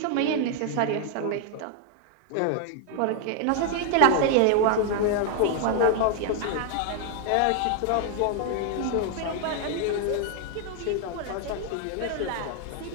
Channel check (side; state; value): both; different; correlation 0.00